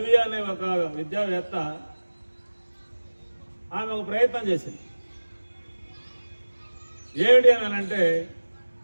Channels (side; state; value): both; inverted; correlation -1.00